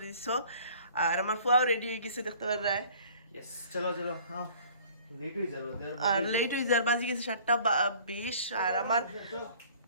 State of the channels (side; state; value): both; inverted; correlation -0.51